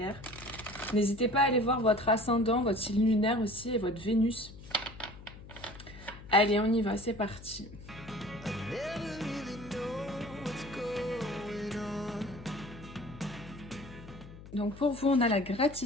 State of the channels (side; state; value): left; noise; hum, 16 dB below the sound